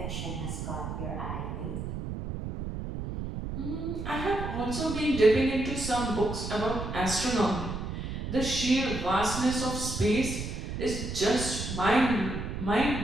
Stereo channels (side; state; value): right; noise; rumble, 5 dB below the sound